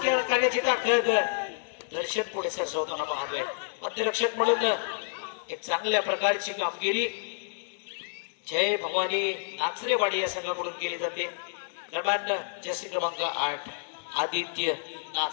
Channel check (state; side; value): silent; right; digital silence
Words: करण्याची ताकद दर्शन पुढे सरसवताना पाहतोय. मध्यरक्षक म्हणून एक चांगल्या प्रकारची कामगिरी जय भवानी नाचरेवाडी या संघाकडून केली जाते. दरम्यान जर्सी क्रमांक 8 आदित्य